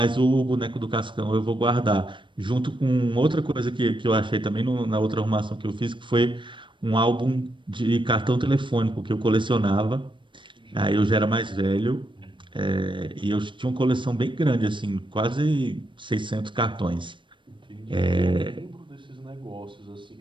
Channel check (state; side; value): late; left; 0.24 ms